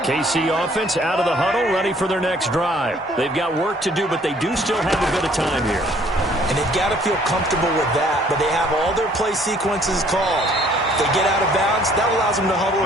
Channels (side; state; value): both; normal; correlation 0.59